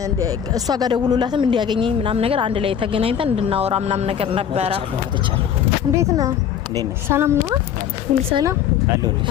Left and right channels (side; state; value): right; quieter; 8.8 dB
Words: እሷ ጋር ደውሎላትም እንዲያገኘኝ ምናምን ነገር አንድ ላይ ተገናኝተን እንድናወራ ምናምን ነገር ነበረ። እንዴት ነው? ሰላም ነው? ሁሉ ሰላም አለ